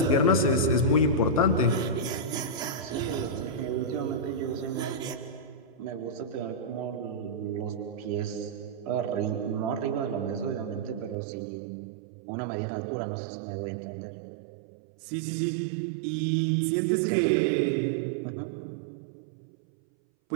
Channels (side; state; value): left; drops out; at 11.2 s